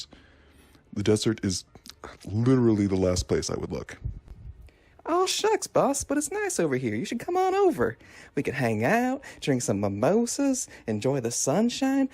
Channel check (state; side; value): identical; both; correlation 1.00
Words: the desert is literally the last place I would look. Oh, shucks, boss, but it's nice over here. You should come on over. We could hang out, drink some mimosas, enjoy the sunshine,